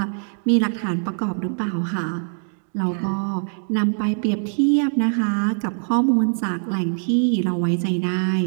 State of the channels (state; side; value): silent; left; digital silence